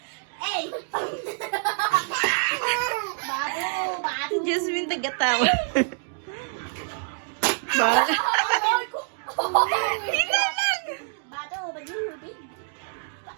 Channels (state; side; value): silent; left; digital silence